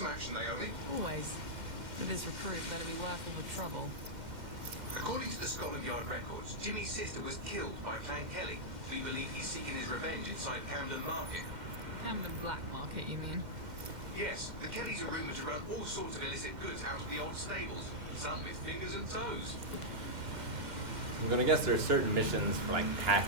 action, Naomi? Always. But this recruit better be worth all the trouble. According to the Scotland Yard records, Jimmy's sister was killed by Clan Kelly. We believe he's seeking his revenge inside Camden Market. Camden Black Market, you mean? Yes, the Kellys are rumoured to run all sorts of illicit goods out of the old stables, some with fingers and toes. I'm gonna guess there are certain missions for like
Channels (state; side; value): late; left; 2.1 ms